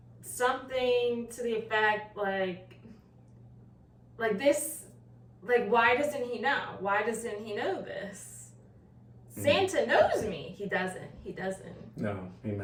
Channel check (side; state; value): both; identical; correlation 1.00